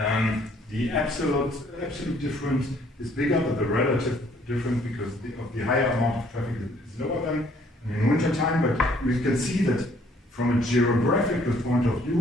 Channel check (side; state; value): both; normal; correlation 0.62